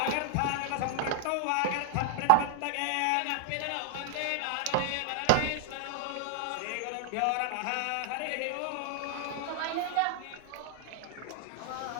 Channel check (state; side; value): different; both; correlation -0.01